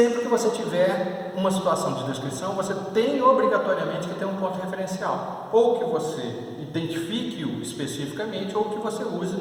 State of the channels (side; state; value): both; identical; correlation 1.00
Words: que você tiver uma situação de descrição, você tem obrigatoriamente que ter um ponto referencial, ou que você identifique-o especificamente, ou que você use